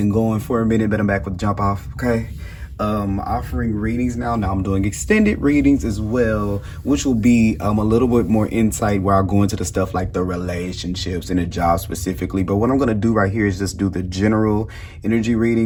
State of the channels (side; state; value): both; identical; correlation 1.00